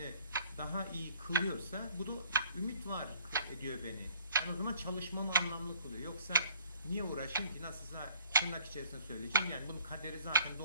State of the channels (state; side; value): inverted; both; correlation -0.55